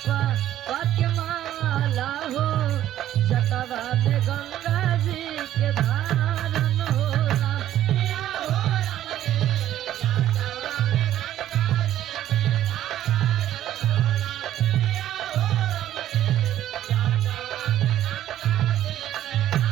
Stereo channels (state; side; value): quieter; left; 12.4 dB